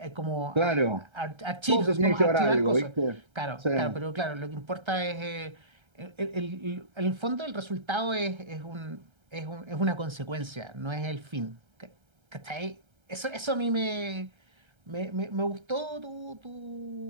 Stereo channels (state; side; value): late; left; 1.3 ms